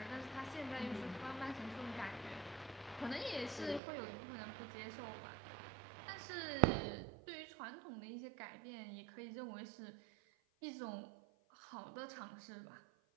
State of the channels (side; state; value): left; drops out; at 3.8 s